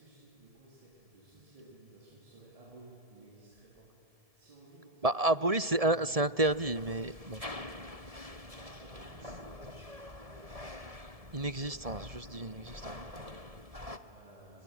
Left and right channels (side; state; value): left; late; 1.7 ms